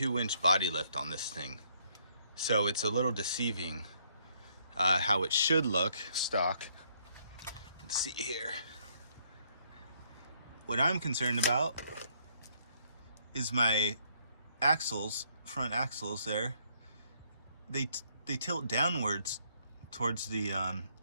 body lift on this thing, so it's a little deceiving how it should look stock. Let's see here. What I'm concerned about is my axles, front axles there. They tilt downwards towards the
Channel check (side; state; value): both; inverted; correlation -0.68